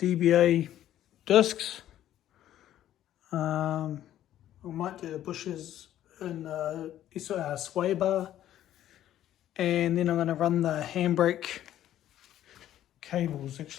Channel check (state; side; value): quieter; right; 12.2 dB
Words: discs. I might do the bushes in sway bar. And then I'm going to run the handbrake cables,